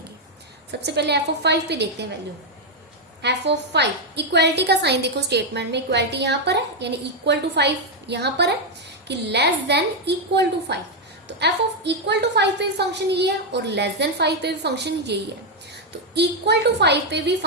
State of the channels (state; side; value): normal; both; correlation 0.02